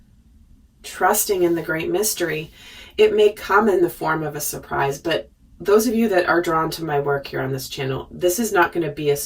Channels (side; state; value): both; identical; correlation 1.00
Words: trusting in the great mystery, it may come in the form of a surprise. But those of you that are drawn to my work here on this channel, this is not going to be a